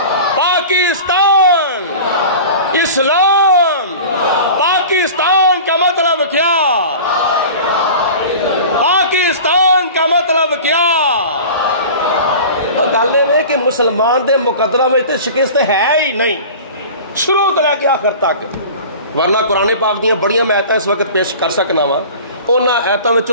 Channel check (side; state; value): both; inverted; correlation -0.38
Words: پاکستان اسلام پاکستان کا مطلب کیا پاکستان کا مطلب کیا گل یہ کہ مسلمان دے مقدرہ میں شکست ہے ہی نہیں شروع تو لے کے آخر تک ورنہ قرآن پاک دیاں بڑیاں میں آیتاں اس وقت پیش کر سکنا وا انہاں آیتاں